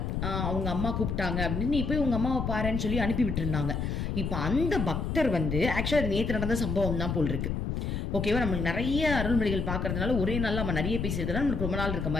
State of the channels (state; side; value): noise; left; rumble, 1 dB below the sound